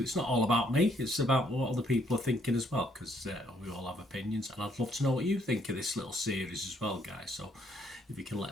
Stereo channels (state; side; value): normal; both; correlation 0.69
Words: not all about me, it's about what other people are thinking as well, because we all have opinions, and I'd love to know what you think of this little series as well, guys. So if you can